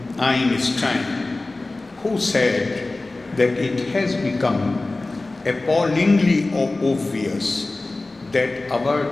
Einstein, who said that it has become appallingly obvious that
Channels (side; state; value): right; quieter; 3.1 dB